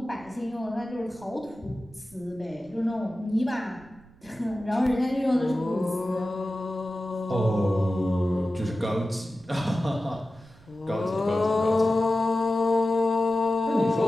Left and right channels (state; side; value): noise; right; rumble, 25 dB below the sound